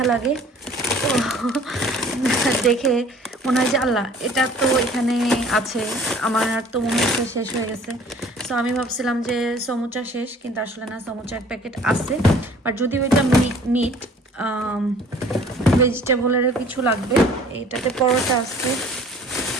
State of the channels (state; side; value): normal; both; correlation 0.51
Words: লাগে। তো দেখে মনে হয় যে আল্লাহ এটা তো এখানে আছে, আমার আর তো মনে হচ্ছে শেষ হয়ে গেছে। সো আমি ভাবছিলাম যে সমুচা শেষ, কিন্তু আসলে না, সমুচার প্যাকেট আছে। আর যদি ওইটা মিট ভেজিটেবলেরও কিছু লাগবে। এটাতে পরোটা আছে,